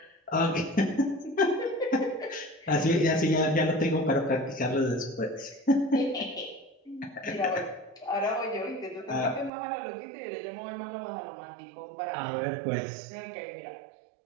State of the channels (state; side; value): drops out; left; at 9.5 s